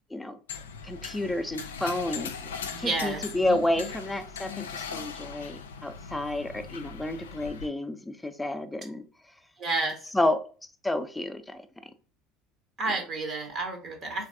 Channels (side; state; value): both; normal; correlation 0.74